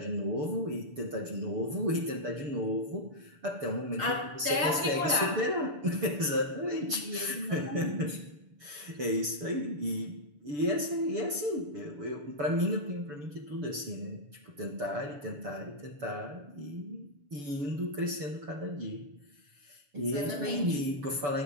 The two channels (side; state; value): left; late; 6.9 ms